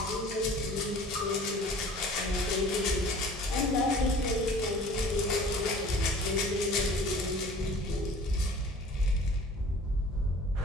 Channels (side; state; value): both; normal; correlation 0.47